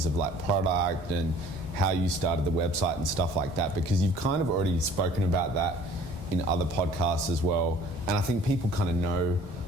of like product and how you started the website and stuff like that, because you've kind of already spoken about that in other podcasts as well, and I think people kind of know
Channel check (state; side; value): noise; left; rumble, 14 dB below the sound